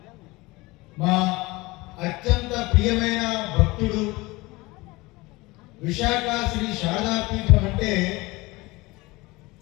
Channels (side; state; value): right; quieter; 22.2 dB